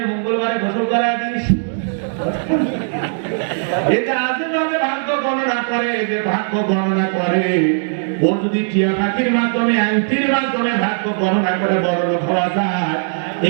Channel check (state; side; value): silent; left; 67 dB below the other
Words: মঙ্গলবারে গোসল করায় দিস। এটা আজেবাজে ভাগ্য গণনা করে, যে ভাগ্য গণনা করে ওর যদি টিয়া পাখির মাধ্যমে, আংটির মাধ্যমে ভাগ্য গণনা করে বড় লোক হওয়া যায়,